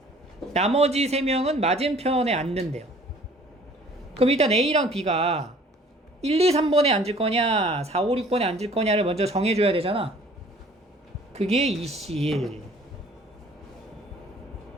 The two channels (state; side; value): normal; both; correlation 0.53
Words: 나머지 3명은 맞은편에 앉는데요. 그럼 일단 A랑 B가 1, 2, 3번에 앉을 거냐 4, 5, 6번에 앉을 거냐를 먼저 정해줘야 되잖아. 그게 2C1.